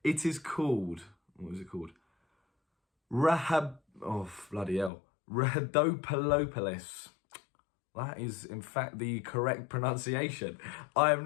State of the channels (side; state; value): right; drops out; at 4.9 s